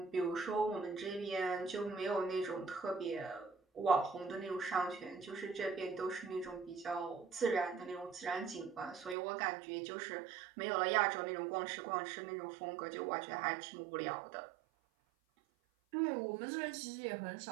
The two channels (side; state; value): left; drops out; at 9.2 s